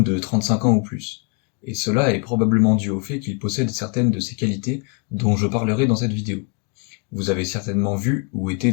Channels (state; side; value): quieter; right; 34.2 dB